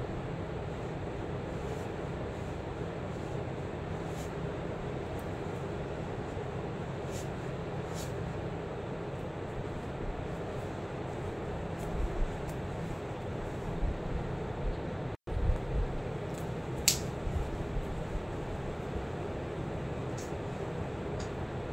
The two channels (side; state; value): both; identical; correlation 1.00